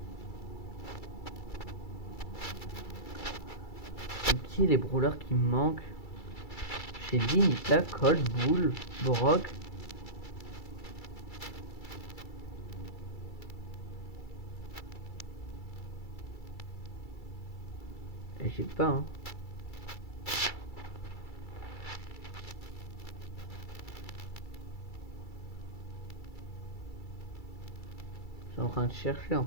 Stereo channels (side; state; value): right; late; 2.3 ms